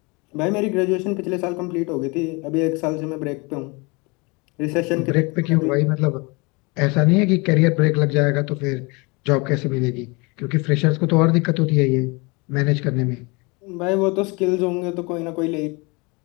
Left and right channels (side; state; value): right; quieter; 28.1 dB